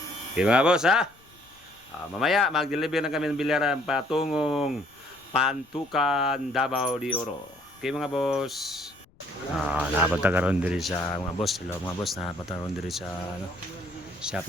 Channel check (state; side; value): noise; left; rumble, 30 dB below the sound